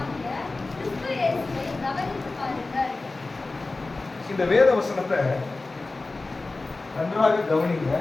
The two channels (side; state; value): right; quieter; 3.4 dB